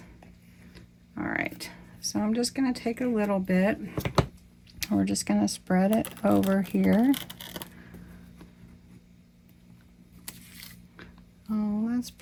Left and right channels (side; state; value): both; identical; correlation 1.00